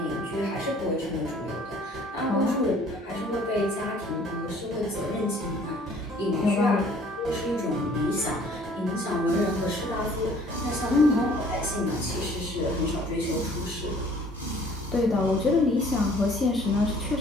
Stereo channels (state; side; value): normal; both; correlation 0.55